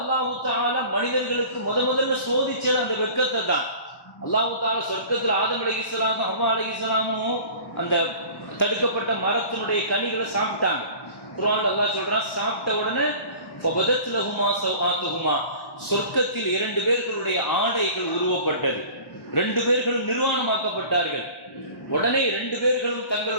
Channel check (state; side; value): late; right; 1.1 ms